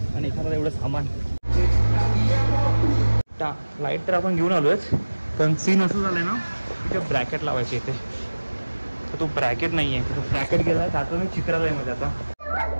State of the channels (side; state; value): both; inverted; correlation -1.00